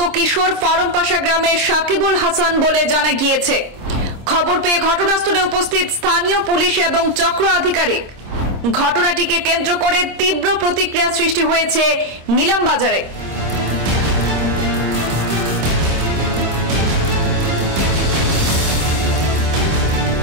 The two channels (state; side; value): late; left; 26 ms